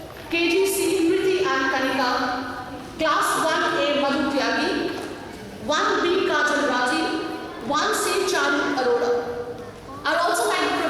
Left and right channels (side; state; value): both; identical; correlation 1.00